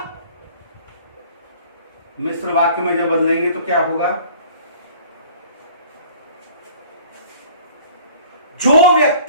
मिश्र वाक्य में जब बदलेंगे तो क्या होगा? जो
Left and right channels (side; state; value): both; inverted; correlation -0.49